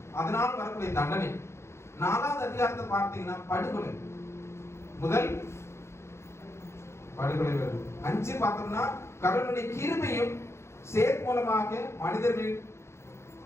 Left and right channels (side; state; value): right; late; 0.13 ms